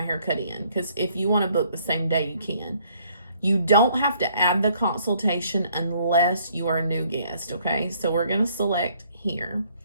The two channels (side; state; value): both; inverted; correlation -0.64